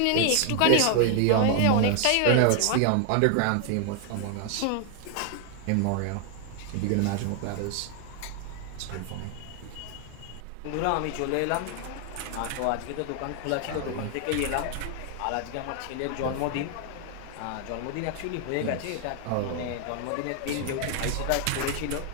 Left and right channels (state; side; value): different; both; correlation 0.00